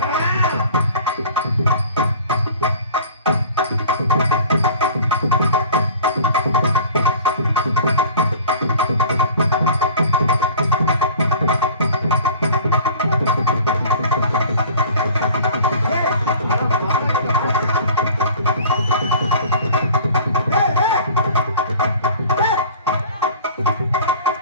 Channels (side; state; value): both; inverted; correlation -0.44